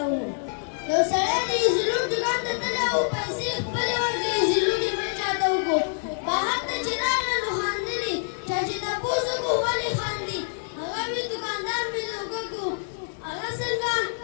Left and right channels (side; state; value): right; silent; digital silence